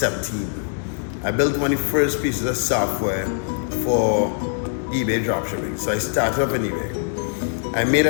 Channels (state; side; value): silent; right; digital silence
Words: I built one of the first pieces of software for eBay dropshipping. So I started up on eBay.